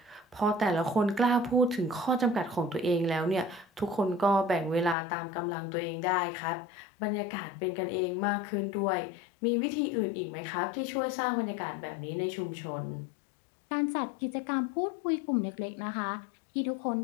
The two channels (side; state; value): right; drops out; at 5.0 s